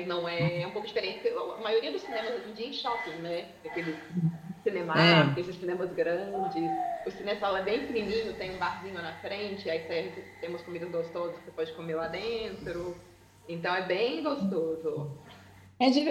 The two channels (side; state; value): both; identical; correlation 1.00